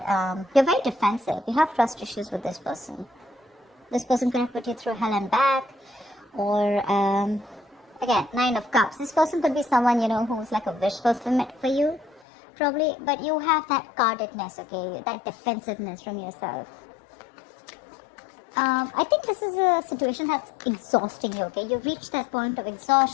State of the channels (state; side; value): drops out; right; at 12.2 s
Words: you're very defensive. You have trust issues with this person. This person could have put you through hell and back. Or, again, Nine of Cups. This person could be someone, who's like a wish fulfillment for you. Probably. But you have that guardedness, okay? That defensiveness from yourself. I think this is a situation that's exhausting you, okay? You've reached that point of